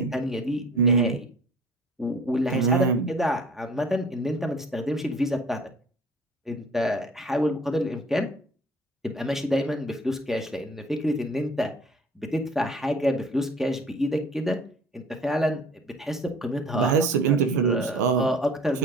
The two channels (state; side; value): normal; both; correlation 0.47